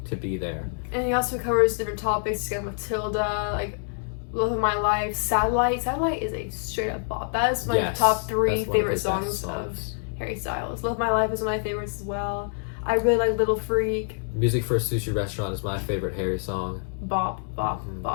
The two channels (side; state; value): right; silent; digital silence